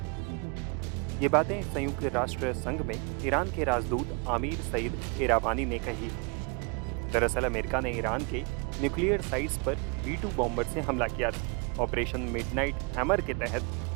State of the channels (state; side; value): quieter; left; 32.6 dB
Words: ये बातें संयुक्त राष्ट्र संघ में ईरान के राजदूत आमिर सईद इरावानी ने कही। दरअसल अमेरिका ने ईरान के न्यूक्लियर साइट्स पर B-2 बॉम्बर से हमला किया था। ऑपरेशन मिडनाइट हैमर के तहत